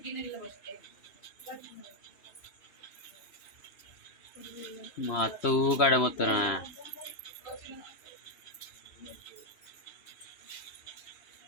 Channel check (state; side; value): late; right; 3.0 ms